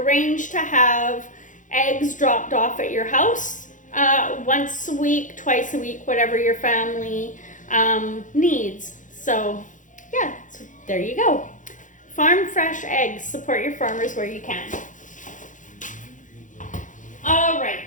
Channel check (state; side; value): late; right; 0.37 ms